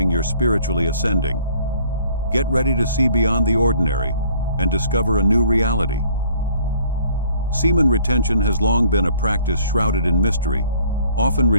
you're spiritually ascending. Get ready to see beyond the ordinary and discover a new reality. Semen retention has long been a practice shrouded in mystery, often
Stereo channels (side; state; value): both; inverted; correlation -0.58